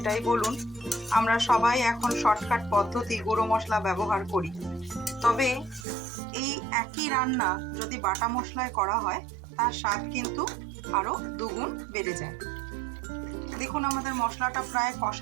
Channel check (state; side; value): drops out; left; at 5.9 s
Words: বলুন, আমরা সবাই এখন শর্টকাট পদ্ধতি গুঁড়ো মশলা ব্যবহার করি। তবে এই একই রান্না যদি বাটা মশলায় করা হয় তার স্বাদ কিন্তু আরও দুগুণ বেড়ে যায়। দেখুন আমাদের মশলাটা প্রায়